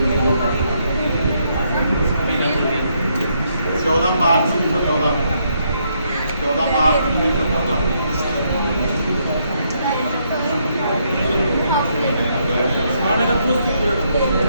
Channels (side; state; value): both; inverted; correlation -0.75